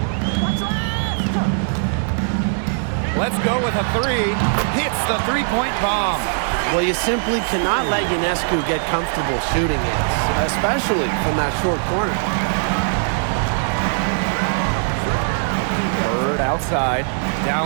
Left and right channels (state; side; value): silent; left; digital silence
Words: Let's go with a three. Hits the three-point bomb. Well, you simply cannot let Ionescu get comfortable shooting it, especially from that short corner. Bird outside.